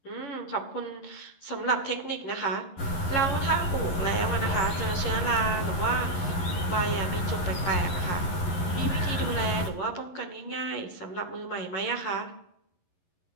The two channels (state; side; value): late; right; 11 ms